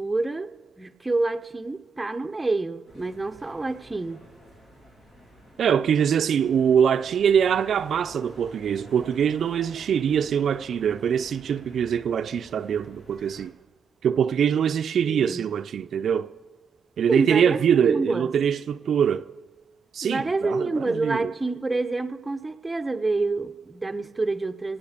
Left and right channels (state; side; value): quieter; left; 6.3 dB